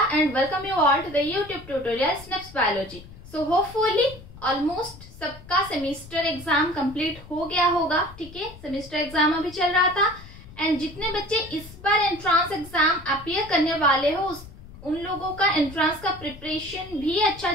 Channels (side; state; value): left; noise; rumble, 18 dB below the sound